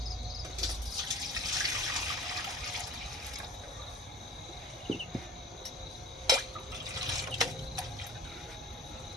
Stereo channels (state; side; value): normal; both; correlation 0.41